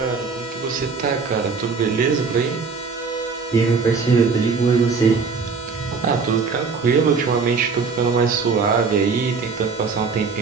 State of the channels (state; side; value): quieter; left; 5.0 dB